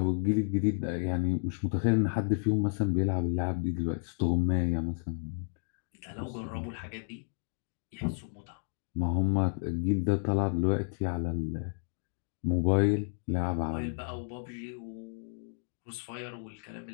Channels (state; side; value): silent; right; digital silence